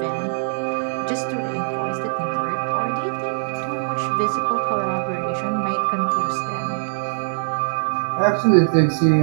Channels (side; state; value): left; silent; 64 dB below the other